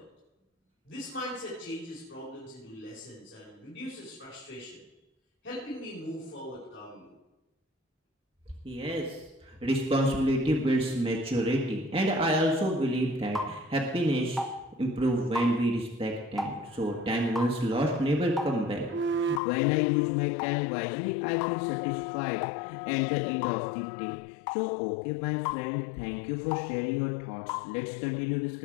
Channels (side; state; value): right; drops out; at 19.4 s